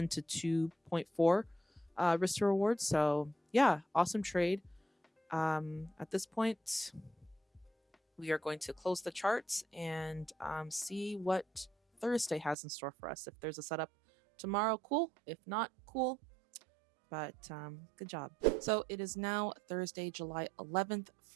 to 2.4 risk to reward. So yeah, awesome trade. At this point, we are going to close the charts and see what Thursday has in store for us. If there's a setup tomorrow, cool. If not, cool. But good job. So it is now Thursday, July 11th,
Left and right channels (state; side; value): drops out; left; at 12.6 s